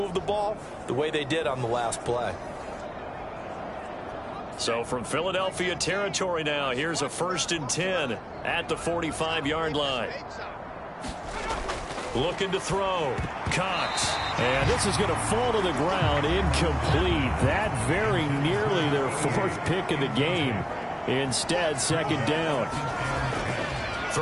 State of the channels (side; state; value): both; identical; correlation 1.00